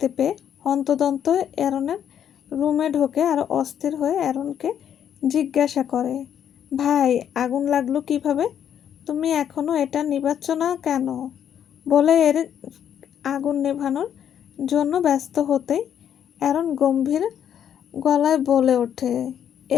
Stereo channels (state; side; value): quieter; right; 9.3 dB